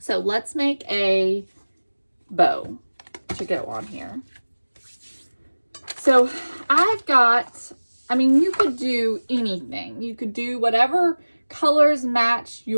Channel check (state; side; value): inverted; both; correlation -1.00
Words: let's make a bow to go on here. So I've got, I mean, you could do anything. You could do whatever colors match